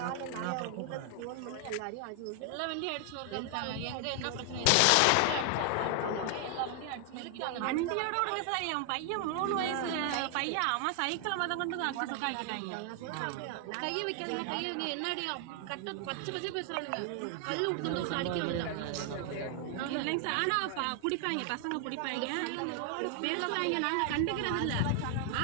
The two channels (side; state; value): both; different; correlation 0.00